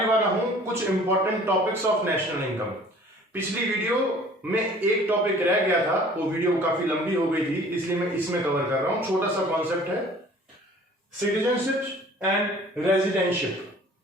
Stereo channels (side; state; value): both; normal; correlation 0.50